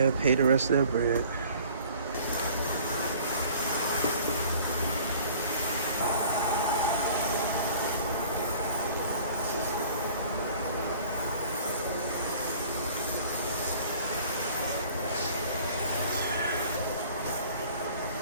and pay the rest of that bread.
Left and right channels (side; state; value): both; inverted; correlation -0.51